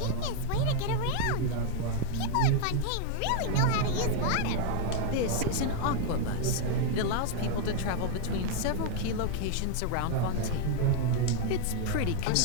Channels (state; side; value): different; both; correlation 0.00